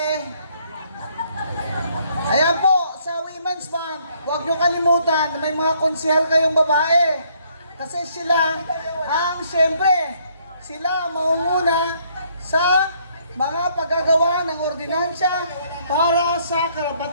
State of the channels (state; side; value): inverted; both; correlation -0.67